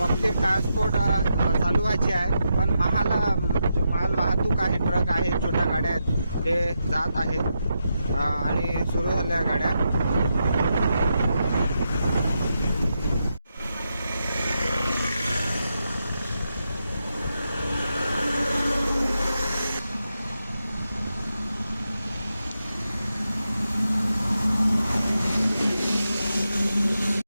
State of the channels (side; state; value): both; inverted; correlation -0.85